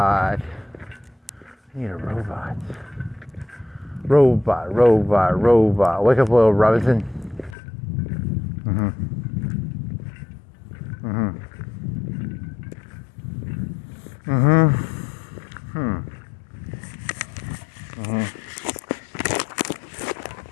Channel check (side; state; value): right; drops out; at 7.6 s